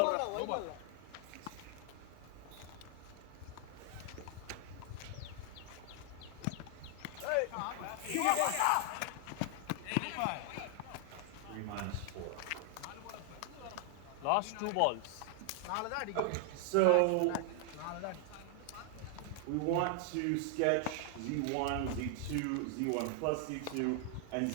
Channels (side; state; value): both; different; correlation 0.00